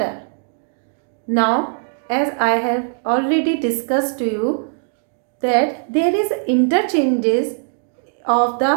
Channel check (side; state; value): left; silent; digital silence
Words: Now, as I have already discussed to you that there is interchanges of